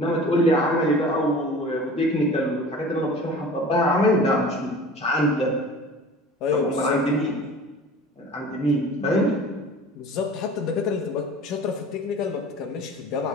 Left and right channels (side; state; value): both; normal; correlation 0.41